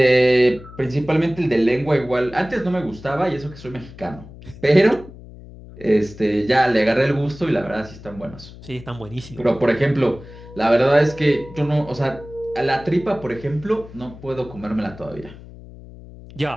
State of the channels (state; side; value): noise; left; hum, 17 dB below the sound